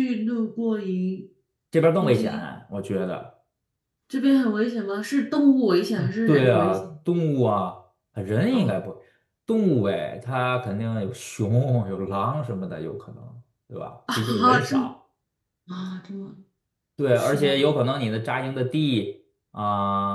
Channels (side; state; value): both; identical; correlation 1.00